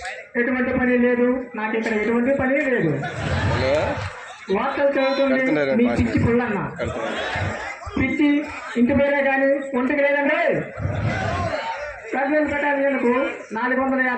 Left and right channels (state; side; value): identical; both; correlation 1.00